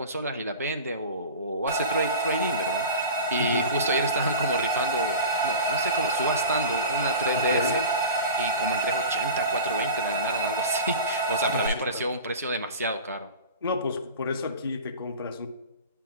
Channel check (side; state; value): both; inverted; correlation -0.34